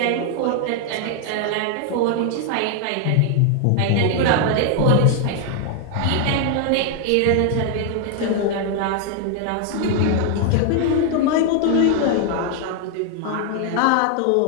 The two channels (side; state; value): both; different; correlation 0.00